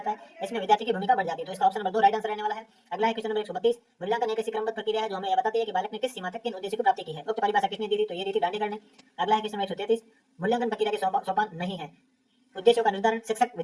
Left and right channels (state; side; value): identical; both; correlation 1.00